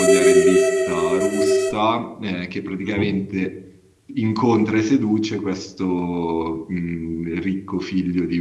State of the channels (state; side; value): identical; both; correlation 1.00